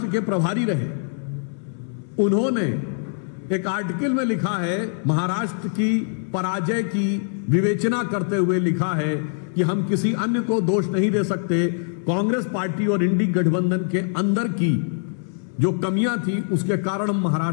के प्रभारी रहे, उन्होंने एक आर्टिकल में लिखा है, महाराष्ट्र की पराजय की विवेचना करते हुए लिखा है कि हम किसी अन्य को दोष नहीं दे सकते, कांग्रेस पार्टी और इंडी गठबंधन के अंदर की जो कमियां थी उसके कारण हम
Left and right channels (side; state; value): right; silent; digital silence